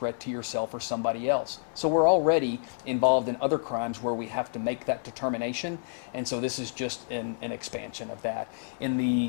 to yourself or somebody else. So we're already involved in other crimes where we have to make that determination, and so this is just an expansion of that. In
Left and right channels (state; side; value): silent; right; digital silence